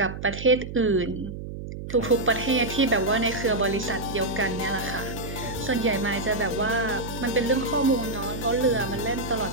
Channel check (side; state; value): right; noise; hum, 9 dB below the sound